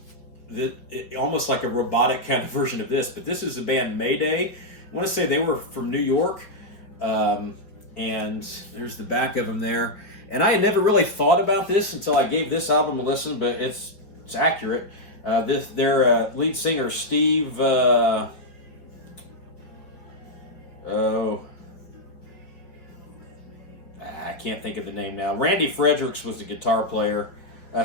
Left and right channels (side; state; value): right; late; 4.9 ms